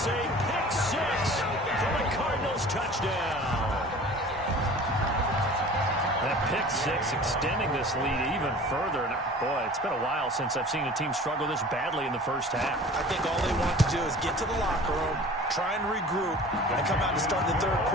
a pick 6 for the Cardinals touchdown. That pick 6 extending this lead even further. And boy, it's been a while since I've seen a team struggle this badly in the first half. I think all they want to do is get to the locker room, try and regroup, and come out to start the third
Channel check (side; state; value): both; normal; correlation 0.43